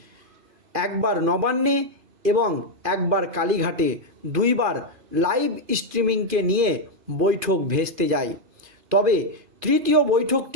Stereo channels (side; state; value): left; late; 2.5 ms